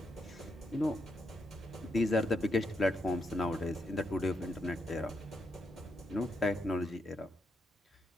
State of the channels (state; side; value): normal; both; correlation 0.80